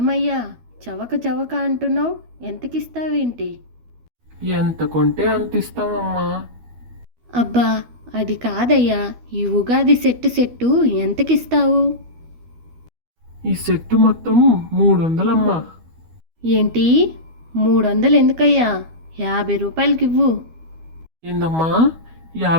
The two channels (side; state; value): left; late; 12 ms